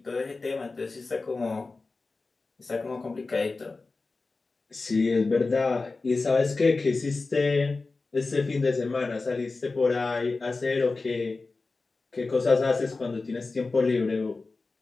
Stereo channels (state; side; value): quieter; right; 3.8 dB